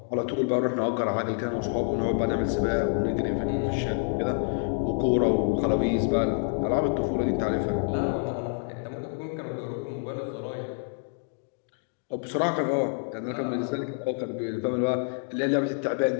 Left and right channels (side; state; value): right; silent; 60 dB below the other